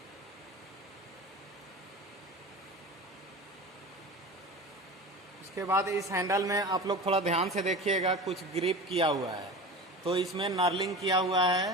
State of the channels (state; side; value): normal; both; correlation 0.32